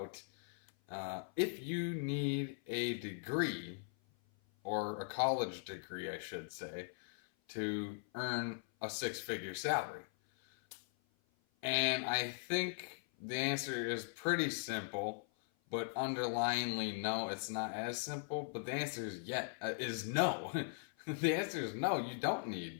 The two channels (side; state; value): right; silent; 51 dB below the other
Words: if you need a degree, or a college degree, I should say, to earn a six-figure salary. And I think the answer is pretty simple, but underlyingly, no, it's not as simple. But the answer is no. The answer is no. You don't